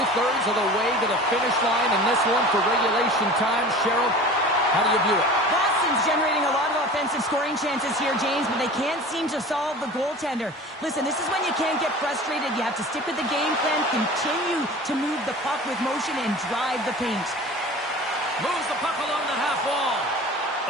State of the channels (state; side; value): normal; both; correlation 0.39